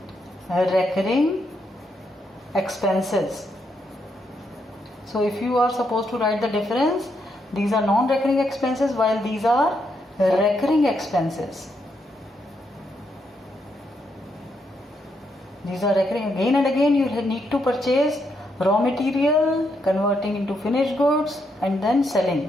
expenses. So if you are supposed to write the difference, these are non-recurring expenses while these are recurring expenses. These are recurring. Again and again you need to purchase raw material, converting into finished goods and then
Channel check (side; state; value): both; normal; correlation 0.78